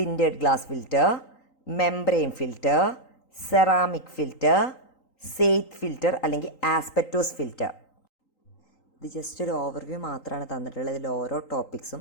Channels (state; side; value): late; right; 3.9 ms